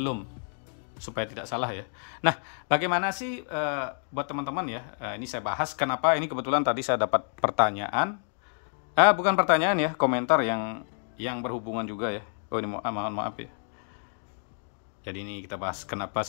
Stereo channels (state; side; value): silent; right; digital silence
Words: supaya tidak salah ya. Nah, bagaimana sih buat teman-teman ya? Ini saya bahas kenapa ini kebetulan tadi saya dapat pertanyaan, bukan pertanyaan ya, komentar yang berhubungan juga ya. Oh ini mohon maaf ya. Jadi ini kita bahas kenapa